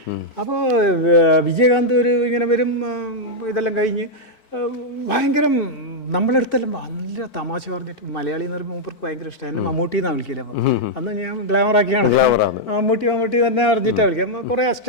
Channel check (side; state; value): right; late; 4.5 ms